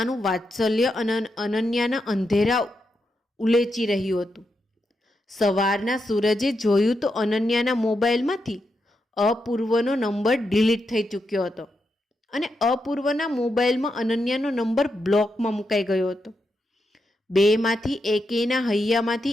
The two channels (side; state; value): both; normal; correlation 0.85